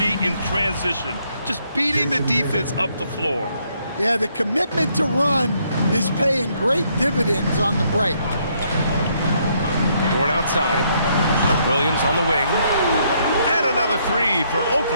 in transition. Just beating the defense up the floor. Yeah, the commitment to run is paying great dividends on the break. Dort outside. Williams on the wing. And another 3 for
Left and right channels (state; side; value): inverted; both; correlation -0.71